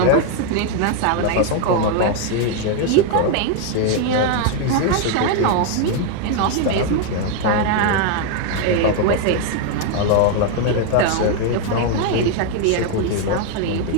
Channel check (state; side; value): different; both; correlation 0.01